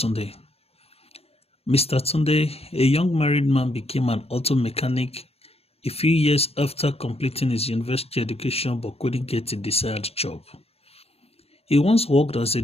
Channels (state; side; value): late; right; 0.29 ms